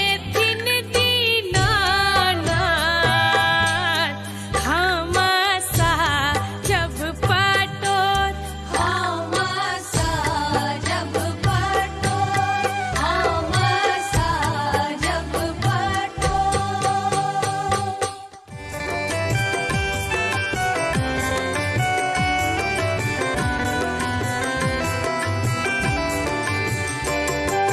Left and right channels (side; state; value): both; identical; correlation 1.00